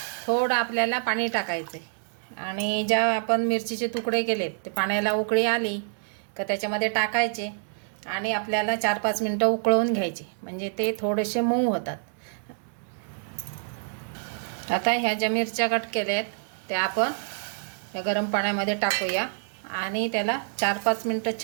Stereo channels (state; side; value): silent; left; digital silence